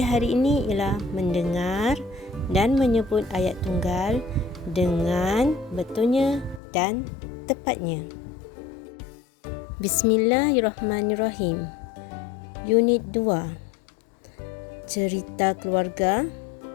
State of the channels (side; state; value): right; drops out; at 6.6 s